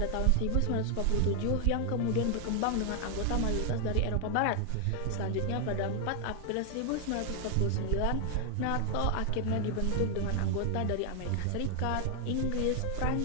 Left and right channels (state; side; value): different; both; correlation 0.00